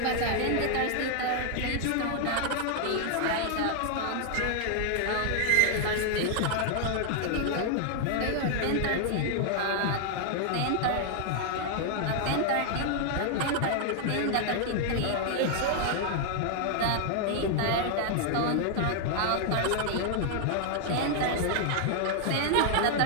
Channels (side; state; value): both; different; correlation 0.00